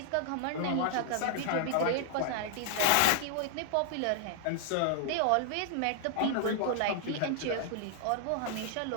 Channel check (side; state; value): both; different; correlation -0.01